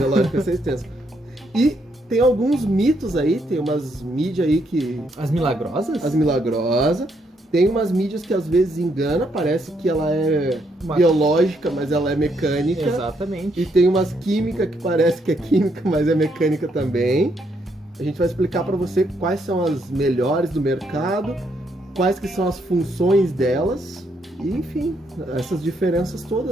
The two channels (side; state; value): both; normal; correlation 0.75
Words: vai ser extenso. E tem alguns mitos aí, tem umas mídias aí que... As milagrosas? As milagrosas. Tem umas mídias que às vezes engana, parece que ela é biológica, mas ela é mecânica. Exatamente. E tem umas químicas que parece que é química, mas é mecânica também. A gente vai explicar para você quais são as melhores do mercado, quais que são as funções delas, e enfim, essas diferenças